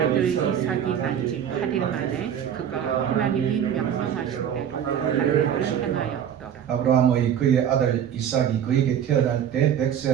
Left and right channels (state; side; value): quieter; left; 9.2 dB